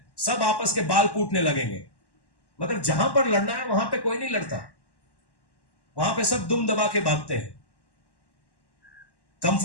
सब आपस के बाल कूटने लगेंगे, मगर जहां पर लड़ना है वहां पे कोई नहीं लड़ता, वहां पे सब दुम दबा के भागते हैं।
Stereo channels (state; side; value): late; right; 1.1 ms